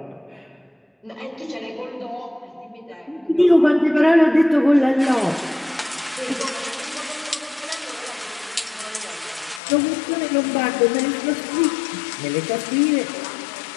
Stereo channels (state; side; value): drops out; right; at 9.6 s